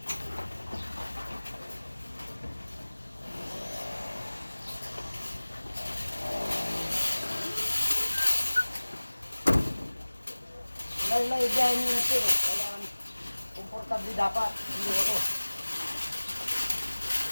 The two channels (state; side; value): inverted; both; correlation -1.00